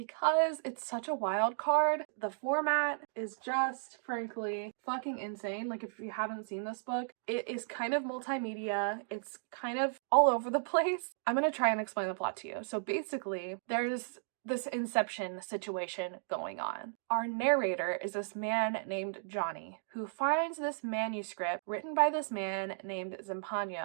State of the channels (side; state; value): left; silent; digital silence